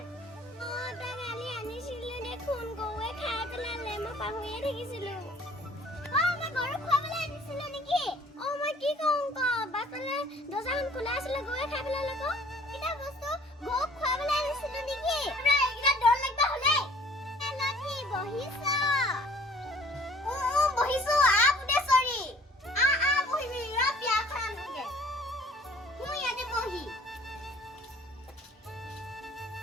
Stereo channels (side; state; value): both; normal; correlation 0.53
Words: তই কালি আনিছিলি দেখোন। গৰুৱে খাই পেলালে, মই পাহৰিয়ে থাকিছিলো। মই গৰুক খুৱাবলৈ আনিছিলো নেকি? মই কি কওঁ ক? বাটলে দৰ্জাখন খোলা আছিলে, গৰুৱে খাই পেলালে ক। কিটা বস্তু গৰুক খুৱাবলৈ আনিছিলো নেকি? এইকেইটা ডৰ লাগবা হ'লে লক্ষী বহিছ। বহিছো বুদেশ্বৰী। বহিবি ৰ বিয়াখন আনোগে। মই ইয়াতে বহি।